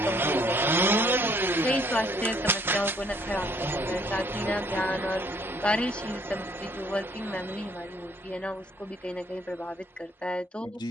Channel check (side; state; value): both; normal; correlation 0.63